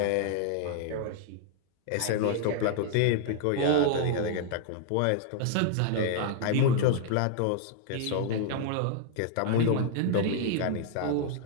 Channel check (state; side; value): different; both; correlation 0.00